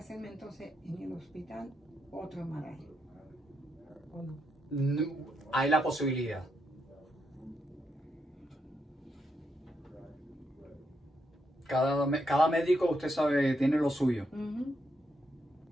entonces en el hospital otro MRI? ¿O no? No, hay la posibilidad. Cada médico, usted sabe, tiene lo suyo.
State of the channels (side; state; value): both; normal; correlation 0.81